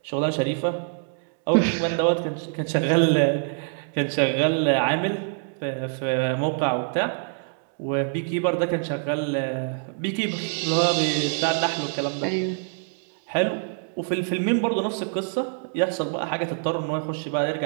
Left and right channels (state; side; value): silent; left; 62 dB below the other